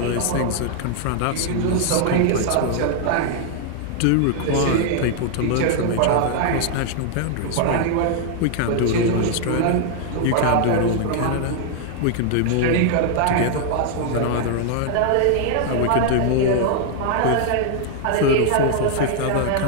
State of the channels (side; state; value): both; different; correlation 0.00